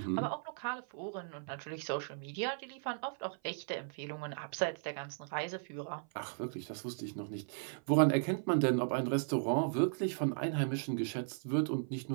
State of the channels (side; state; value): left; silent; 53 dB below the other